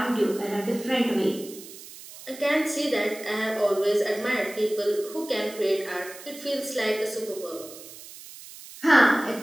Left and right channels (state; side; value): noise; right; hiss, 16 dB below the sound